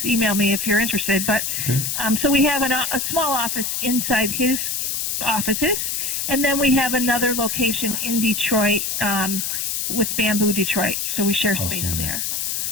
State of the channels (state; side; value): noise; left; hiss, 1 dB below the sound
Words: email me if you're interested. But so we have a small office inside his offices, and then we have another location in Detroit with Bamboo Detroit, so we share space there.